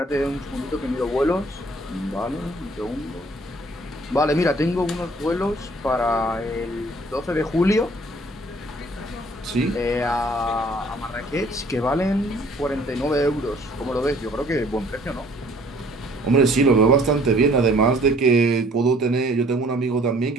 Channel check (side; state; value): both; normal; correlation 0.57